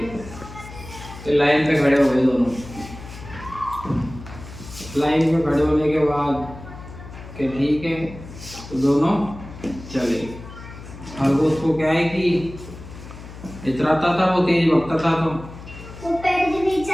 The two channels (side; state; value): left; noise; hum, 15 dB below the sound